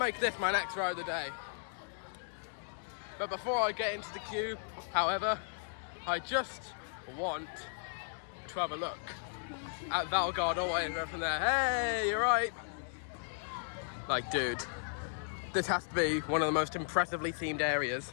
this my next ride of the day. But before I get into the queue, however, I just want to have a look at Valgard all the way from there. Hey, you're right. Like, dude, this has to be one of the most impressively themed areas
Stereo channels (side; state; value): right; silent; digital silence